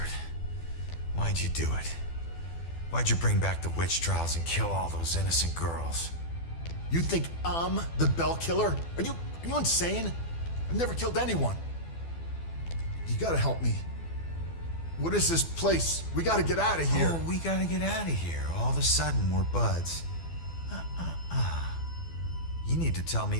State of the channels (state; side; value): late; right; 12 ms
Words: Why'd you do it? Why'd you bring back the witch trials and kill all those innocent girls? You think I'm the Bell Killer? Are you insane? I've never killed anyone. You gotta help me. What is this place? We gotta get out of here. Oh, we gotta get out of here. All of a sudden, we're buds. You need to tell